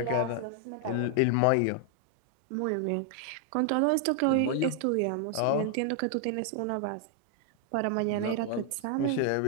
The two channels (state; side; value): different; both; correlation 0.00